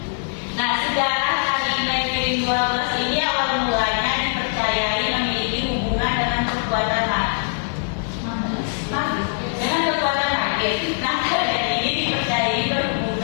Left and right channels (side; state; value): right; silent; 64 dB below the other